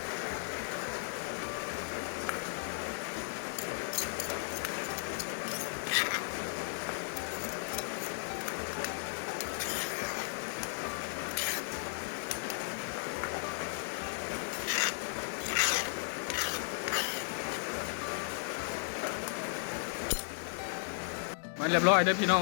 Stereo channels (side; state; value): right; silent; digital silence